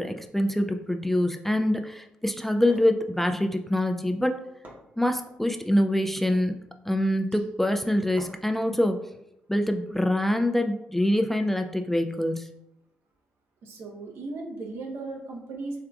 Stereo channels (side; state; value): both; normal; correlation 0.94